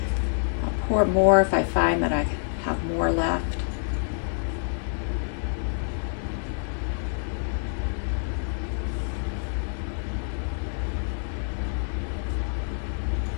I'll pour more if I find that I have more left.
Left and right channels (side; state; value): right; silent; digital silence